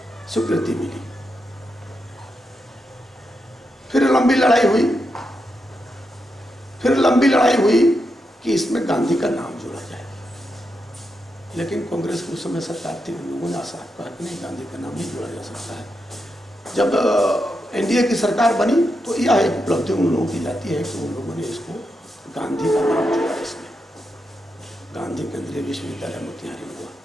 स्वीकृति मिली। फिर लंबी लड़ाई हुई कि इसमें गांधी का नाम जोड़ा जाए, लेकिन कांग्रेस की उस समय सरकार थी, उन लोगों ने साफ कहा कि नहीं, गांधी का नाम नहीं जोड़ा जा सकता है। जब एनडीए की सरकार बनी तो यह एक उपलब्धि उन लोगों की जाती है कि उन लोगों ने इसको गांधी का नाम जोड़ा, इसमें गांधी केंद्रीय विश्वविद्यालय मोतिहारी हुआ।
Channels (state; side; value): normal; both; correlation 0.85